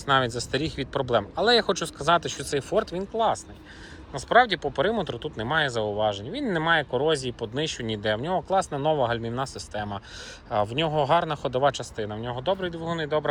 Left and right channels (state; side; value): identical; both; correlation 1.00